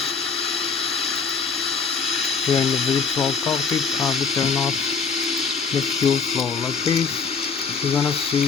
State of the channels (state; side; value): quieter; right; 5.3 dB